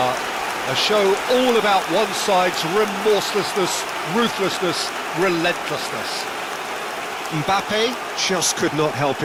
A show all about one side's remorselessness, ruthlessness, relentlessness. Mbappe just could not help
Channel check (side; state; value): both; identical; correlation 1.00